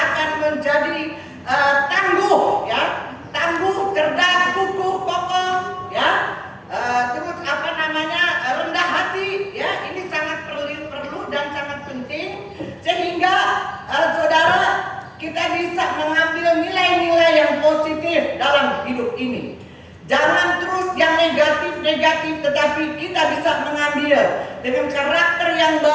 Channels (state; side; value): identical; both; correlation 1.00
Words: menjadi tangguh, ya, tangguh, cerdas, kukuh, kokoh, ya. Terus rendah hati, ya, ini sangat perlu dan sangat penting sehingga saudara kita bisa mengambil nilai-nilai yang positif dalam hidup ini. Jangan terus yang negatif-negatif, tetapi kita bisa mengambil dengan karakter yang